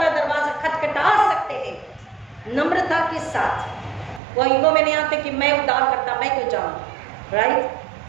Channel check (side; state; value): left; drops out; at 4.2 s